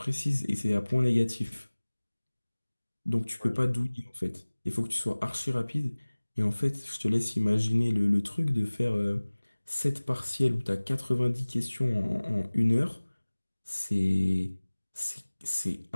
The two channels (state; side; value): inverted; both; correlation -1.00